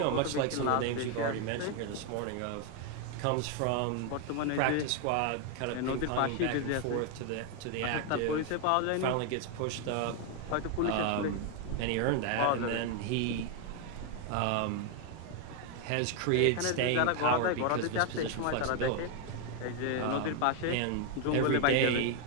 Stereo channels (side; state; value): both; different; correlation 0.01